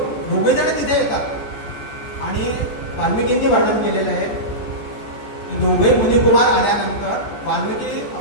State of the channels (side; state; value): right; late; 14 ms